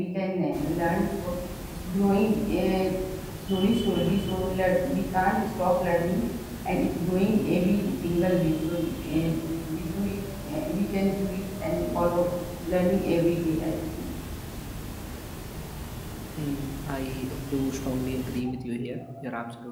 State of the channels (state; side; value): identical; both; correlation 1.00